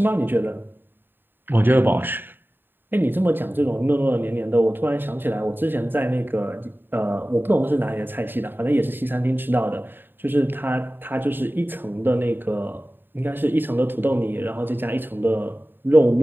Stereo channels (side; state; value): left; late; 0.095 ms